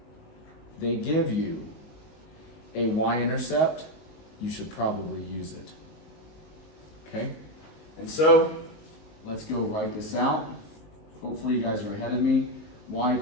they give you a y-intercept, you should probably use it. Okay? And so, let's go write this out. Hopefully you guys are ahead of me. Y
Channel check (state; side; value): late; right; 19 ms